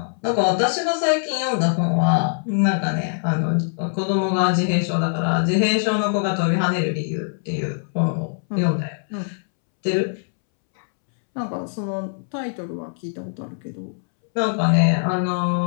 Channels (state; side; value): silent; right; 64 dB below the other